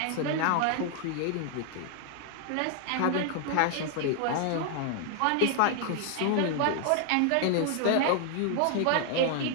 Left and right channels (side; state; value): both; different; correlation 0.00